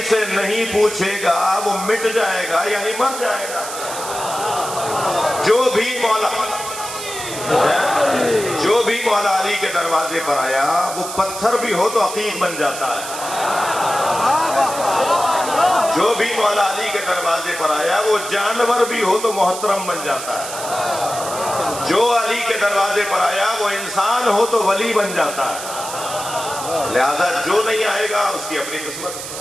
سے نہیں پوچھے گا وہ مٹ جائے گا، یعنی مر جائے گا۔ جو بھی مولا علی کے دروازے پر آیا وہ پتھر بھی ہو تو عقیق بن جاتا ہے۔ جو بھی مولا علی کے دروازے پر آیا وہ جانور بھی ہو تو محترم بن جاتا ہے۔ جو علی کے دروازے پر آیا وہ انسان ہو تو ولی بن جاتا ہے۔ لہذا جو نہیں آئے گا اس کی اپنی قسمت۔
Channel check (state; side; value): noise; right; hiss, 9 dB below the sound